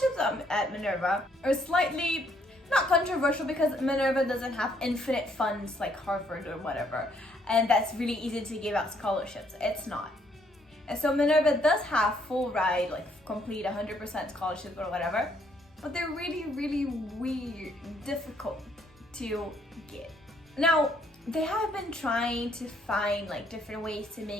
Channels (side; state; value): both; normal; correlation 0.69